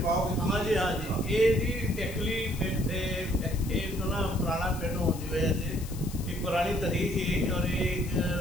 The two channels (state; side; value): noise; left; hiss, 15 dB below the sound